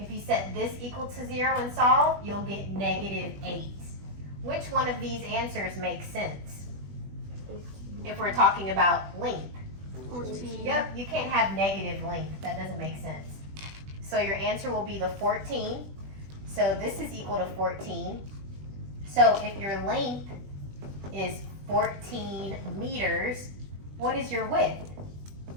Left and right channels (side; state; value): left; late; 20 ms